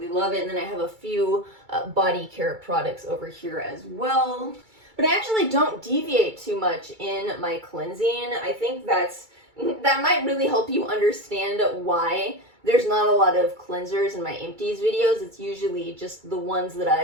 love it. And then I have a few body care products over here as well. But I actually don't deviate too much in my cleansing. I think that might really help you understand why there's not a lot of cleansers in my empties videos. It's usually just the ones that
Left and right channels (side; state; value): left; late; 2.3 ms